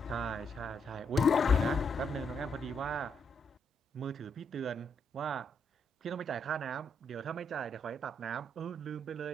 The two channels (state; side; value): normal; both; correlation 0.76